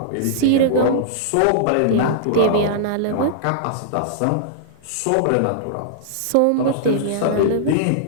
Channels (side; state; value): both; different; correlation -0.01